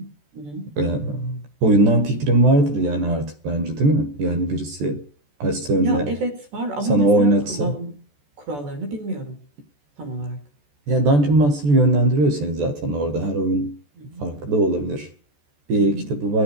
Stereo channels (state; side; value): late; left; 14 ms